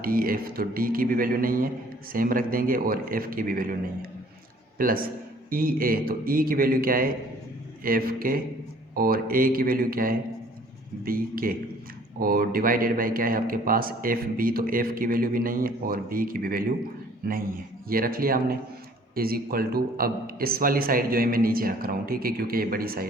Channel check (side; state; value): both; normal; correlation 0.55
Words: डी एफ़, तो डी की भी वैल्यू नहीं है सेम रख देंगे, और एफ़ की भी वैल्यू नहीं है, प्लस ई ए, तो ई की वैल्यू क्या है एफ़ के, और ए की वैल्यू क्या है बी के, और डिवाइडेड बाय क्या है आपके पास एफ़ बी, तो एफ़ की वैल्यू भी नहीं है और बी की भी वैल्यू नहीं है, ये रख लिया हमने, इज इक्वल टू अब इस वाली साइड जो है मैं नीचे रख रहा हूँ। ठीक है, क्योंकि ये बड़ी